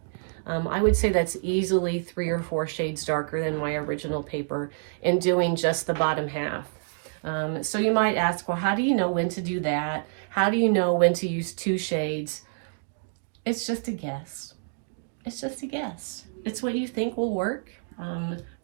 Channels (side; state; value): left; silent; digital silence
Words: I would say that's easily 3 or 4 shades darker than my original paper, and doing just the bottom half. So you might ask, well, how do you know when to do that? How do you know when to use 2 shades? It's just a guess. It's just a guess. It's what you think will work